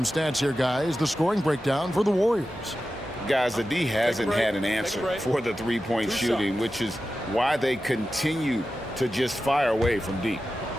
stats here, guys. The scoring breakdown for the Warriors. Guys, the D hasn't had an answer for the three-point shooting, which is why they continue to just fire away from deep.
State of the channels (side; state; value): both; normal; correlation 0.93